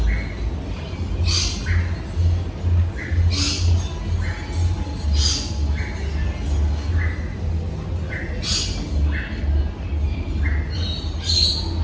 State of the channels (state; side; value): identical; both; correlation 1.00